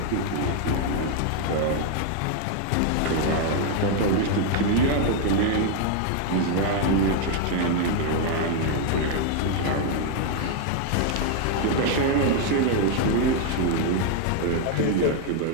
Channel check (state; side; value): different; both; correlation 0.00